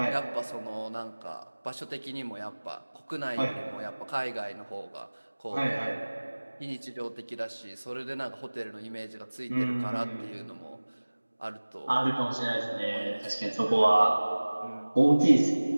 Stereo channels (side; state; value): both; inverted; correlation -1.00